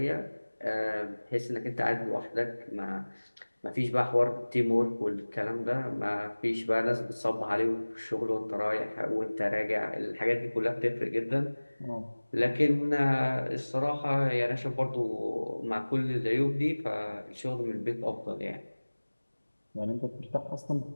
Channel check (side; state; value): both; inverted; correlation -1.00